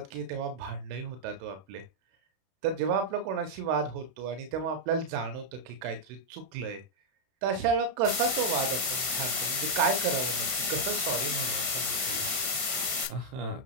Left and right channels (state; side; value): late; left; 31 ms